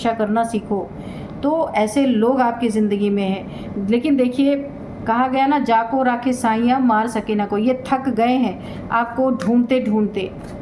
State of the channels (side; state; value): both; identical; correlation 1.00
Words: करना सीखो। तो ऐसे लोग आपकी ज़िंदगी में हैं। लेकिन देखिए, कहा गया ना, जाको राखे साइयाँ मार सके ना कोई। ये थक गए हैं आपको ढूंढते ढूंढते